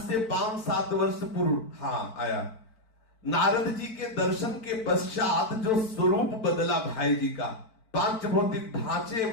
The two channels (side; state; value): right; late; 4.5 ms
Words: से 5-7 वर्ष पूर्व आया नारद जी के दर्शन के पश्चात जो स्वरूप बदला भाई जी का, पांच भौतिक ढांचे